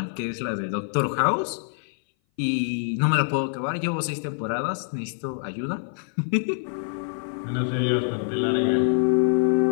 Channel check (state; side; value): silent; right; 58 dB below the other